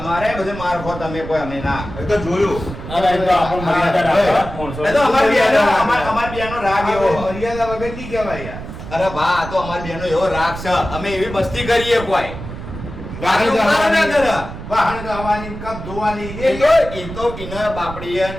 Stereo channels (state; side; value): noise; right; rumble, 10 dB below the sound